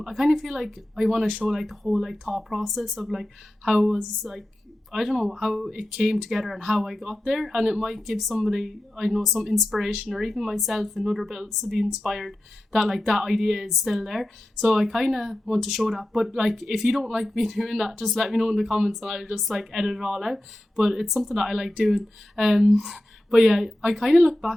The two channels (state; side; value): normal; both; correlation 0.92